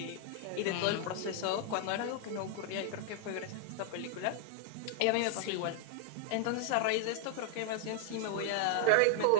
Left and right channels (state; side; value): different; both; correlation -0.01